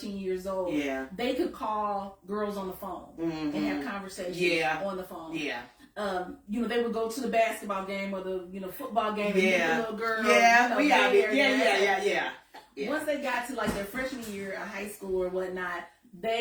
years old, they could call girls on the phone and have conversations on the phone. Yeah. They would go to the basketball game or the football game and meet the little girl. Yeah, we out there. Yeah. Once they got to like their freshman year of high school or whatnot,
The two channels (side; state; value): both; identical; correlation 1.00